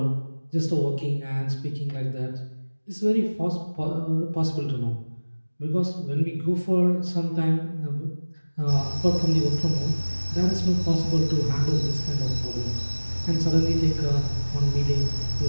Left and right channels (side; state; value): both; inverted; correlation -1.00